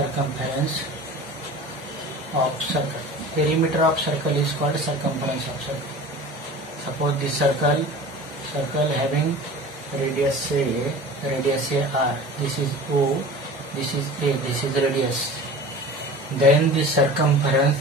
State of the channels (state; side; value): normal; both; correlation 0.38